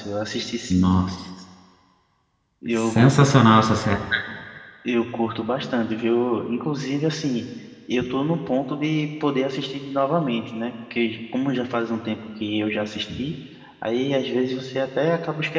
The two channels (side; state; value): both; identical; correlation 1.00